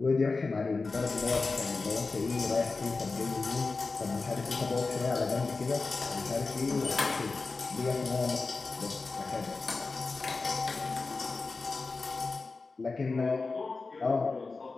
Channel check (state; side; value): quieter; right; 3.9 dB